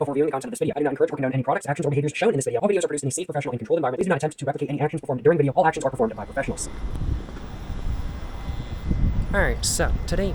before viewing the content of this video. I do not encourage or condone any products, actions, or behaviors shown in this video. All videos are produced in a safe, professional, and controlled environment. Please do not attempt to replicate any actions performed during the video. All actions are performed by professionals. Alright, so today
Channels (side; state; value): both; identical; correlation 1.00